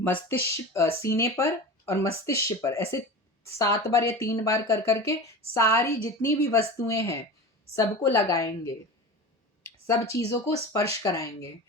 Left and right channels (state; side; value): normal; both; correlation 0.31